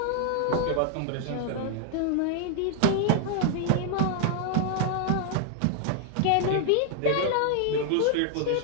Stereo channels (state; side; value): different; both; correlation 0.00